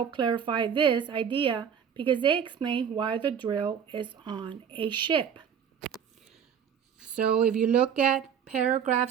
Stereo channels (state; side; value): quieter; left; 7.8 dB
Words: clarify this idea because they explain why the drill is on a ship. So if you look at